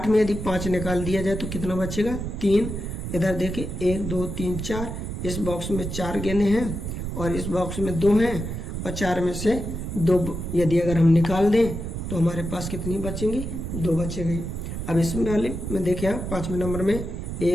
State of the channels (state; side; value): noise; right; rumble, 5 dB below the sound